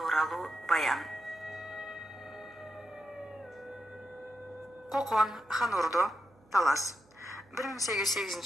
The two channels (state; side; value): noise; right; hum, 30 dB below the sound